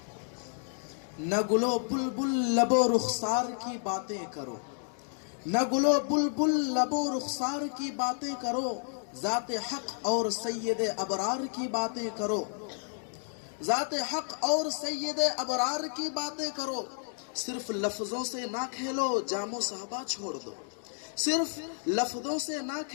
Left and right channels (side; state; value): right; silent; 57 dB below the other